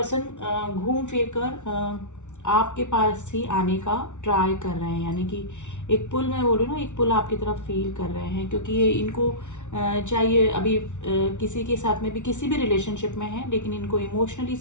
घूम फिर कर आपके पास ही आने का ट्राई कर रहे हैं। यानी कि एक पुल, मैं बोल रही हूँ ना, एक पुल आपकी तरफ फील कर रहे हैं, क्योंकि ये इनको चाहिए अभी किसी के साथ में भी, किसी भी रिलेशनशिप में है, लेकिन इनको इमोशनली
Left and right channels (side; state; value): right; late; 0.84 ms